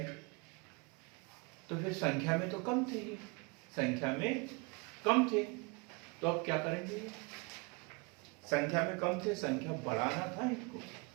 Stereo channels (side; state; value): left; quieter; 29.5 dB